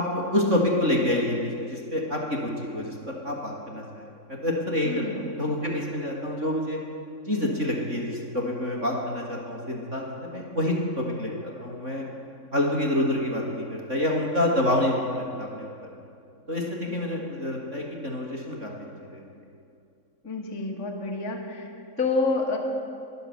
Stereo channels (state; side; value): late; left; 3.6 ms